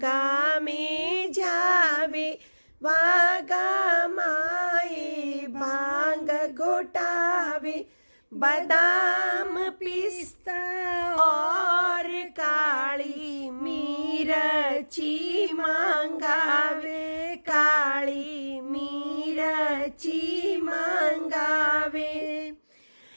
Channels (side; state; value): both; inverted; correlation -1.00